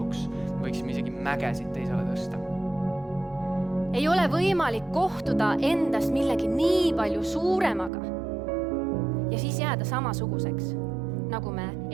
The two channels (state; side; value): drops out; left; at 7.9 s